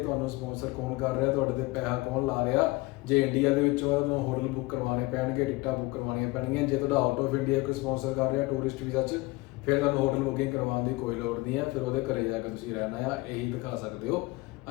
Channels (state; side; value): quieter; right; 22.5 dB